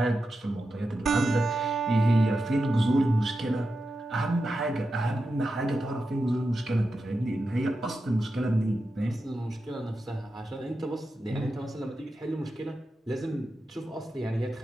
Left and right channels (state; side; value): normal; both; correlation 0.90